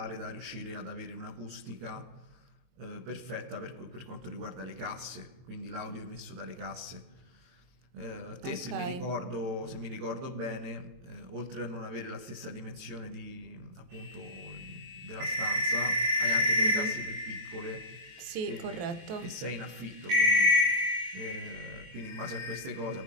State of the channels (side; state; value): left; late; 23 ms